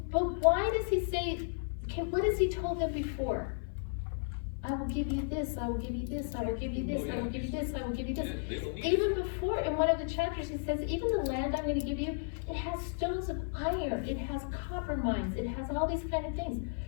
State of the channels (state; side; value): silent; right; 55 dB below the other